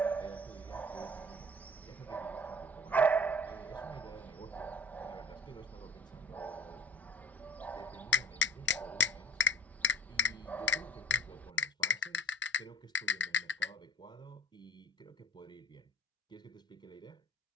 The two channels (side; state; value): both; normal; correlation 0.45